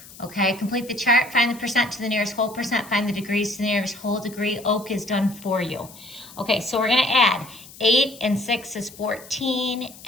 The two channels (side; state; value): left; noise; hiss, 19 dB below the sound